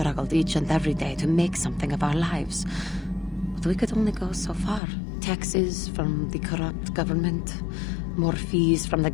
each and every day to make something of our lives. But we could only go so far. Taxes from the corrupt government, more fees from the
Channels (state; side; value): drops out; right; at 4.8 s